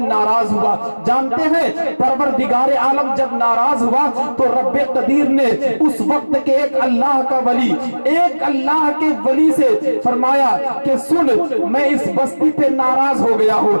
ہوا. جانتے ہیں پروردگار عالم جب ناراض ہوا تو رب قدیر نے اس وقت کے ایک اللہ کا ولی, ایک اللہ کے ولی سے فرمایا کہ سن میں اس بستی پہ ناراض ہو گیا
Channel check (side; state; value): both; inverted; correlation -1.00